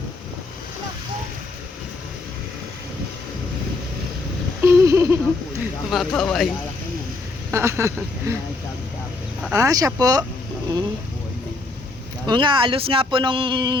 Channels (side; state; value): right; quieter; 3.4 dB